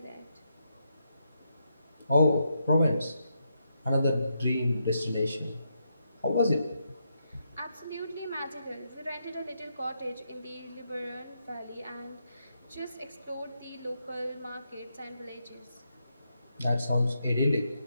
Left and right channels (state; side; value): inverted; both; correlation -0.81